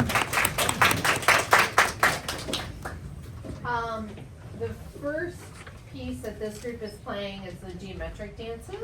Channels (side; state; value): both; identical; correlation 1.00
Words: The first piece that this group is playing is the geometric